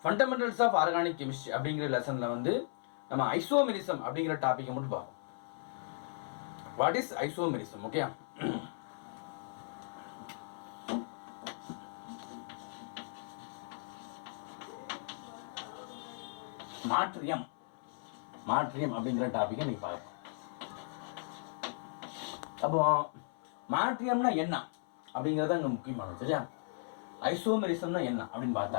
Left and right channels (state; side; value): silent; right; 54 dB below the other